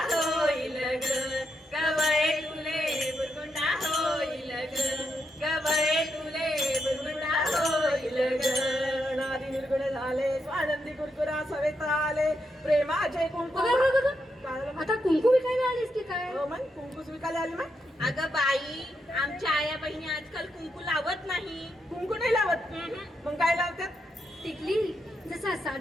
होईल ग, गवळे तुले बुरगुंडा होईल ग, गवळे तुले बुरगुंडा होईल ग. नारी निर्गुणे झाले स्वानंदी कुरकुरा सवेत आले प्रेमाचे कुंकू. बघा बघा बघा, काय झालं मग? आता कुंकू विकायला आलीस की काय? हो मग कुंकू विकायला आली मग. अगं बाई, आमच्या आया बहिणी आजकाल कुंकू लावत नाही. कुंकू नाही लावत मग काय लावतात? टिकली. जसा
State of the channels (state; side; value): normal; both; correlation 0.82